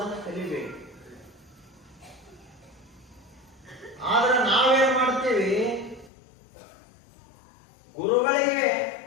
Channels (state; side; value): drops out; right; at 6.1 s